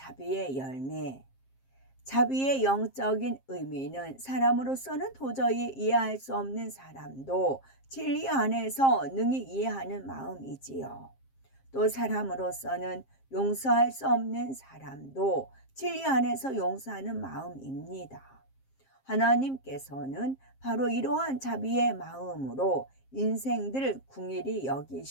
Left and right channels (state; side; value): late; right; 7.5 ms